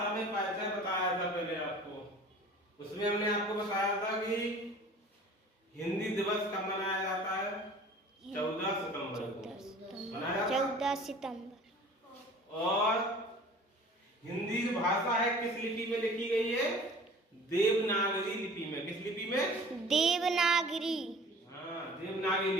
में परिचय बताया था पहले आपको। उसमें हमने आपको बताया था कि हिंदी दिवस कब मनाया जाता है? 14 सितंबर को मनाया 14 सितंबर। और हिंदी जो भाषा है किस लिपि में लिखी गई है? देवनागरी लिपि में। किस लिपि में? देवनागरी। हाँ, देवनागरी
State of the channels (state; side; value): normal; both; correlation 0.46